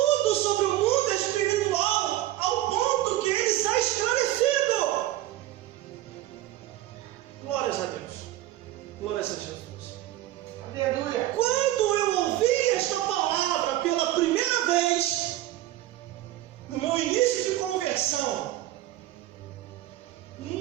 sobre o mundo espiritual, ao ponto que ele está esclarecido. Glórias a Deus. Glórias a Jesus. Aleluia. Quando eu ouvi esta palavra pela primeira vez, no meu início de conversão,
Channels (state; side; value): quieter; left; 14.7 dB